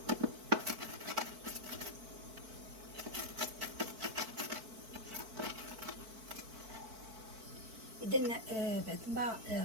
اذا بعد ما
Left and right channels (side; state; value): left; late; 4.5 ms